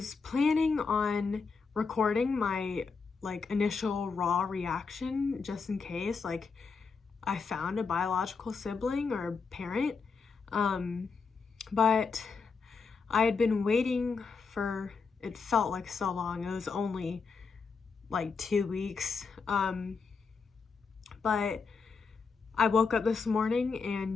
planning on recording my initial raw reaction just in case I found a biological sibling or parent, but I had been waiting for, it felt like so long. It was only 2 weeks, but I woke up this morning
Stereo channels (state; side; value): quieter; right; 5.0 dB